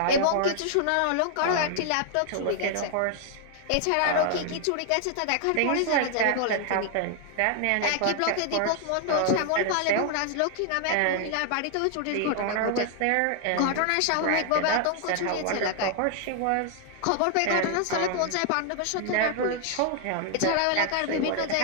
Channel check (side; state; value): both; different; correlation 0.00